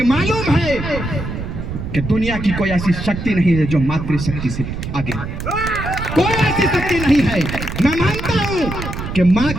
मालूम है कि दुनिया की कोई ऐसी शक्ति नहीं है जो मातृशक्ति से आगे, कोई ऐसी शक्ति नहीं है। मैं मानता हूं कि माँ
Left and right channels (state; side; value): noise; right; rumble, 6 dB below the sound